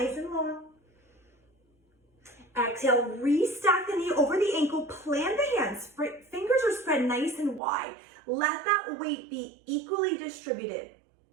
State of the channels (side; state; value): left; drops out; at 7.6 s